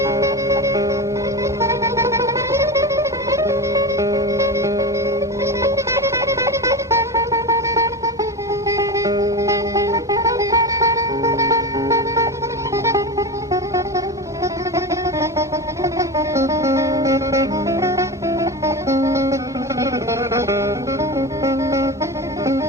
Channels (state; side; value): normal; both; correlation 0.24